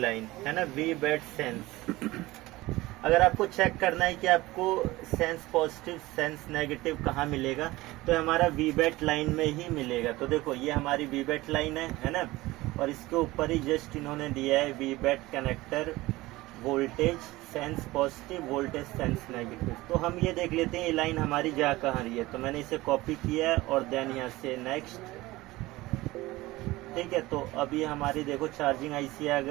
लाइन, है ना, VBAT सेंस। अगर आपको चेक करना है कि आपको सेंस पॉजिटिव सेंस नेगेटिव कहाँ मिलेगा, तो हमारा VBAT लाइन में ही मिलेगा। तो देखो ये हमारी VBAT लाइन है ना, और इसके ऊपर ही जस्ट इन्होंने दिया है VBAT connector voltage sense positive voltage sense negative. तो हम ये देख लेते हैं ये लाइन हमारी जा कहाँ रही है। तो मैंने इसे कॉपी किया है और देन यहाँ से नेक्स्ट, ठीक है। तो अभी हमारी देखो चार्जिंग IC आ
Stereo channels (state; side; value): quieter; left; 19.2 dB